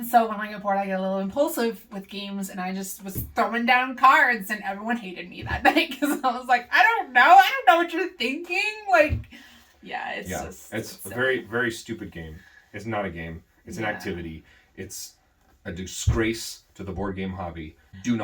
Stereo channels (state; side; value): identical; both; correlation 1.00